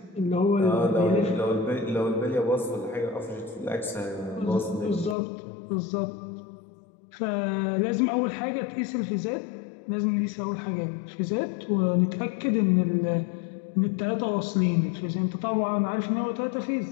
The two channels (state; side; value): drops out; right; at 5.2 s